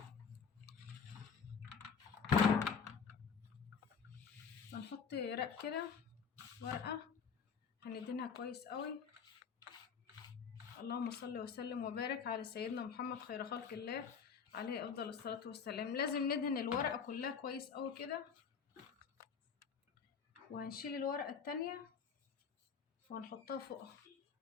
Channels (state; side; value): quieter; right; 6.4 dB